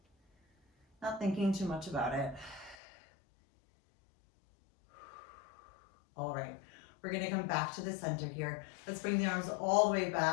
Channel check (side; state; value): right; drops out; at 2.8 s